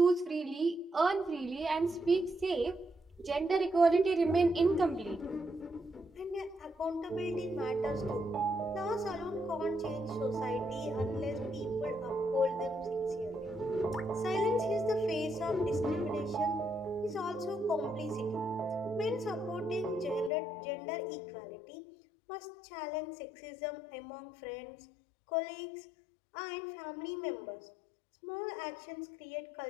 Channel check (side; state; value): right; drops out; at 20.3 s